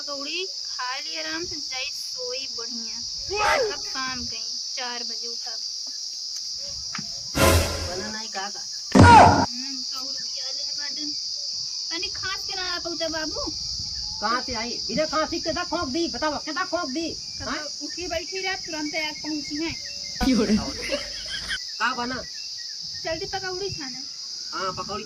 खा ली आराम से, जाई सोई बढ़िया। अब काम कहीं 4 बजे उठब। बना नहीं का पकौड़ी दिया ले बाटन तनी खास के ना पहुंचा बाबू। कहां से आई बिना खांसी के दा खोक दी, बताओ केदा खोक दी। हां उठी बैठी रात तुरंत आ पहुंची है। का बना जल्दी पकौड़ी छाने। हां पकौड़ी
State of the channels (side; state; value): both; identical; correlation 1.00